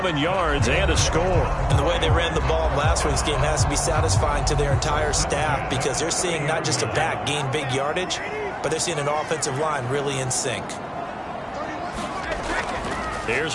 yards, and a score. And the way they ran the ball in last week's game has to be satisfying to their entire staff because they're seeing not just a back gain big yardage, but they're seeing an offensive line really in sync. Here's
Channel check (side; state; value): both; identical; correlation 1.00